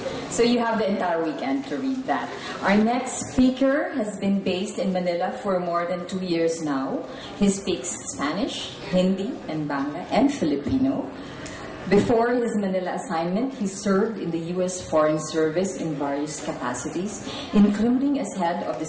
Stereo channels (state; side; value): identical; both; correlation 1.00